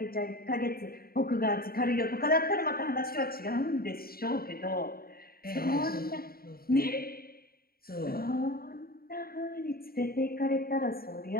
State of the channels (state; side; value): late; right; 0.43 ms